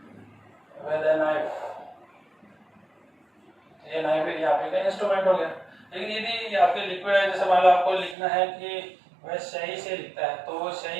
with a knife, ये नाइफ यहाँ पे का इंस्ट्रूमेंट हो गया। लेकिन यदि आपके लिक्विड है, जैसे मान लो आपको लिखना है कि वह सही से लिखता है, तो वो सही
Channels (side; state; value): left; drops out; at 8.2 s